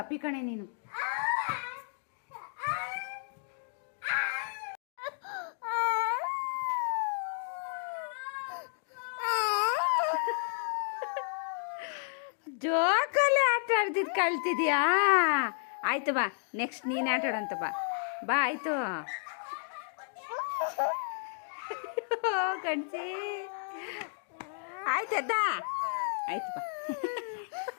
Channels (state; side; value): silent; right; digital silence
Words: ಕಣೆ ನೀನು. ಜೋಕಲ್ಲಿ ಆಟ ಆಡ್ತಿದ್ ಕಳ್ತಿದ್ಯಾ? ಆಯ್ತು ಬಾ, ನೆಕ್ಸ್ಟ್ ನೀನು ಆಟ ಆಡಂತ ಬಾ. ಬಾ ಆಯ್ತು. ಕಣ್ಸಿ ಆಯ್ತದ, ಆಯ್ತು ಬಾ.